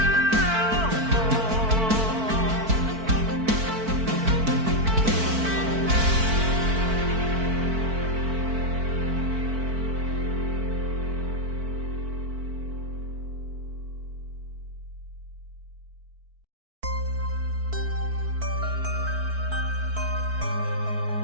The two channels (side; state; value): left; late; 4.5 ms